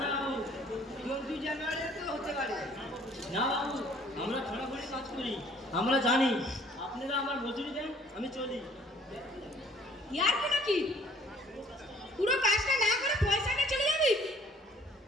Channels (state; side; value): normal; both; correlation 0.57